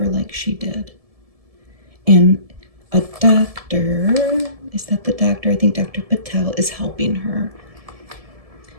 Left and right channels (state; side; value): late; left; 1.7 ms